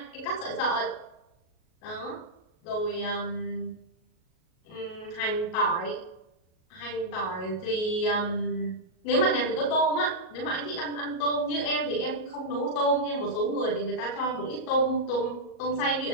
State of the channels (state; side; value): late; right; 38 ms